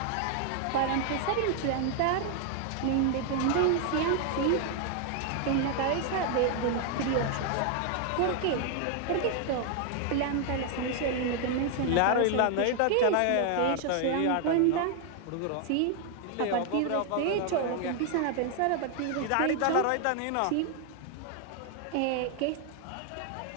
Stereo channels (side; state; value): both; different; correlation 0.00